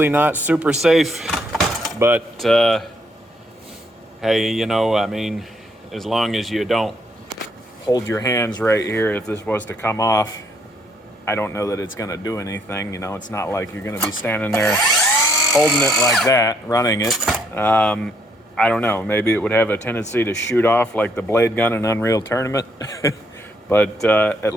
not super safe, but hey, you know, I mean, as long as you don't hold your hands right here if this was to come off, I don't know that it's going to do anything. You know, it's not like you're going to be standing there holding it like that, running it. I don't know. Maybe it would have a tendency to shoot off like the blade gun in Unreal Tournament. But at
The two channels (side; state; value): both; normal; correlation 0.70